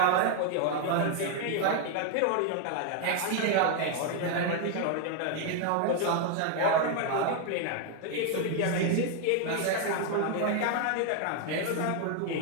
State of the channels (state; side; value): different; both; correlation 0.01